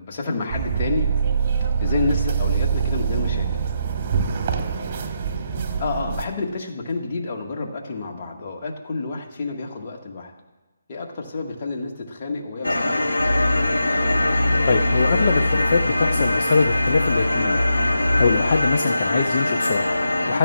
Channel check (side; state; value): both; inverted; correlation -0.84